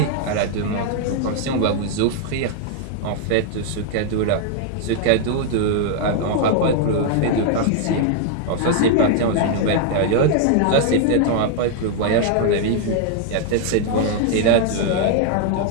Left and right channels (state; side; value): different; both; correlation 0.00